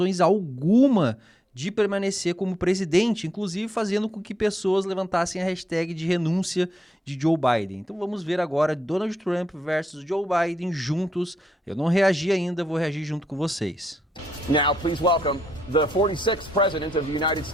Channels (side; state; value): both; normal; correlation 0.80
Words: alguma de permanecer como presidente, inclusive fazendo com que pessoas levantassem a hashtag de renúncia de Joe Biden. Então vamos ver agora Donald Trump versus Joe Biden juntos. Eu não reagi ainda, vou reagir junto com vocês. Now, please welcome the 46th President of the United